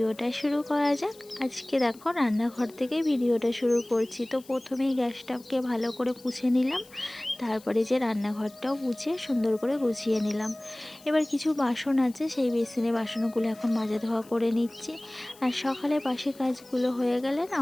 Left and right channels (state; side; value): noise; left; hiss, 24 dB below the sound